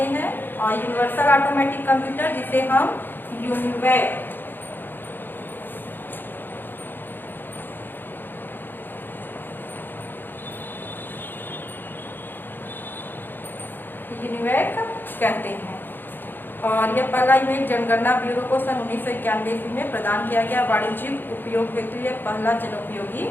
हैं। और यूनिवर्सल ऑटोमेटिक कंप्यूटर जिसे हम यूनिवैक कहते हैं। और यह पहला इमेज जनगणना ब्यूरो को सन 1991 ईस्वी में प्रदान किया गया वाणिज्यिक उपयोग हेतु यह पहला जनोपयोगी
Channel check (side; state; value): right; late; 0.095 ms